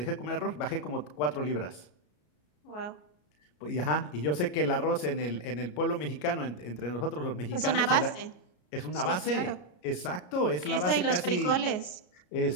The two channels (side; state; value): right; late; 33 ms